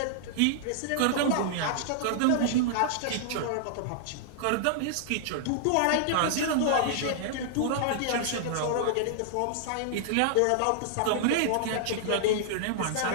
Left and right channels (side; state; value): both; different; correlation -0.01